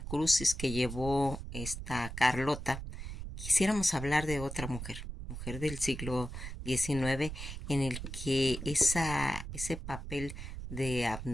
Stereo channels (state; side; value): noise; right; rumble, 8 dB below the sound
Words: que llevó esta Carlota. Quisiéramos hablar de otra mujer del siglo XIX, en el que ese papel de